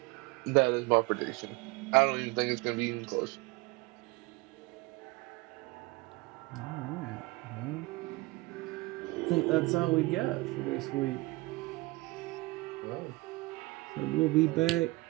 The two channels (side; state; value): left; quieter; 22.7 dB